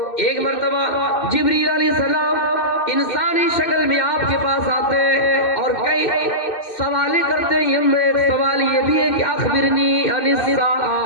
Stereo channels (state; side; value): late; right; 2.6 ms